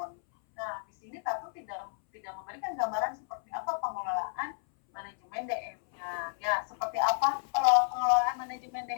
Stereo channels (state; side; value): silent; right; 57 dB below the other